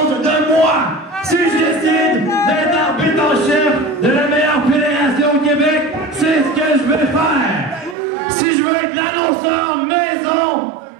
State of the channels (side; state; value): left; drops out; at 8.0 s